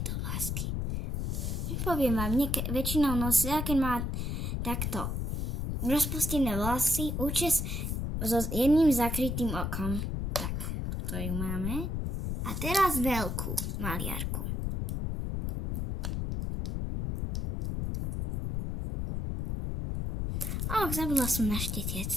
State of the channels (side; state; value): left; noise; rumble, 2 dB below the sound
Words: vlásky. Poviem vám, väčšinou nosia, keď má takto rozpustené vlasy, účes so jedným zakrytým okom. Tak, toto ju máme. A teraz veľkú maliarku. Zabudla som na štetec.